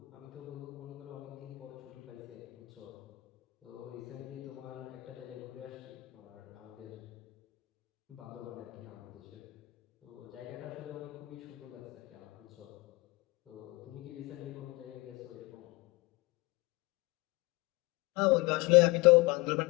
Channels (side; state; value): right; quieter; 22.8 dB